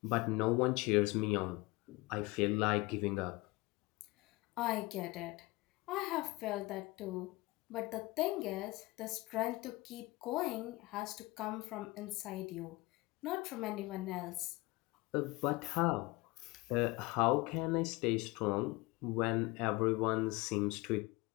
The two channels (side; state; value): right; quieter; 22.6 dB